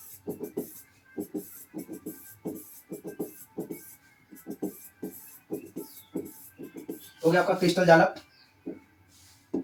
हो गया आपका क्रिस्टल जालक।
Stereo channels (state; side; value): identical; both; correlation 1.00